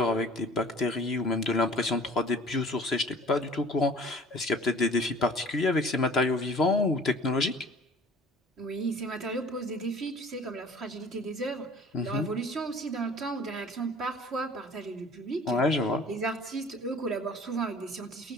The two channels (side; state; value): both; normal; correlation 0.47